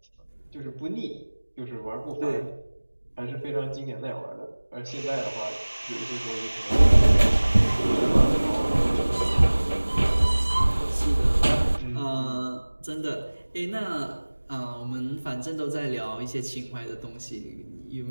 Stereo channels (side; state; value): both; inverted; correlation -1.00